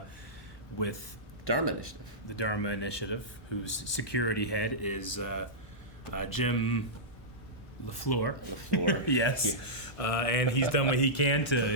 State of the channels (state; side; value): normal; both; correlation -0.13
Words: Dharma Initiative. The Dharma Initiative, whose security head is Jim LaFleur. Yes. And he's done what he can